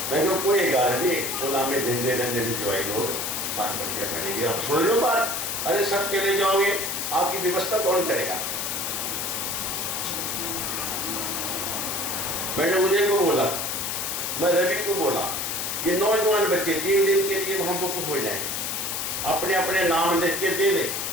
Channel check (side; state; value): left; noise; hiss, 2 dB below the sound